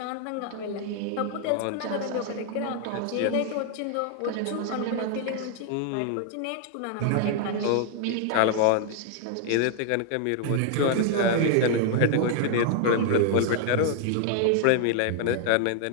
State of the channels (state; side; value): different; both; correlation 0.00